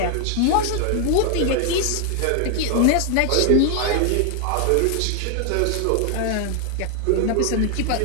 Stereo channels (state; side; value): different; both; correlation 0.00